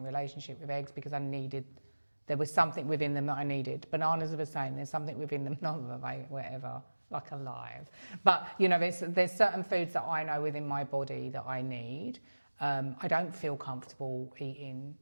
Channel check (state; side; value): inverted; both; correlation -1.00